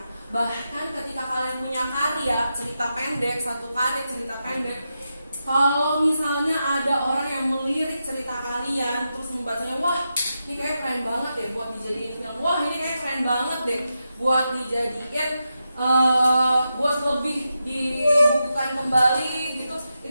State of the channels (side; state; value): both; inverted; correlation -0.88